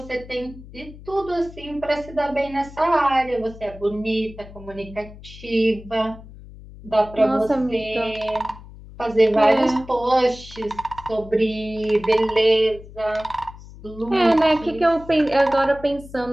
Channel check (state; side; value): noise; left; hum, 17 dB below the sound